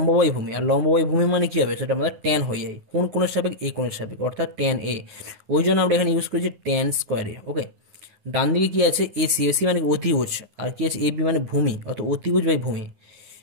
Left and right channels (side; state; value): left; late; 9.8 ms